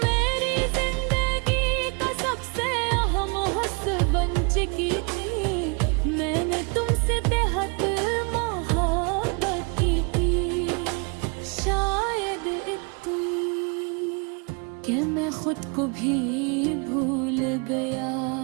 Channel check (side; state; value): left; quieter; 33.7 dB